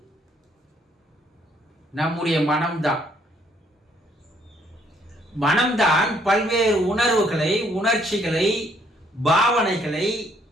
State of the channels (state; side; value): normal; both; correlation 0.67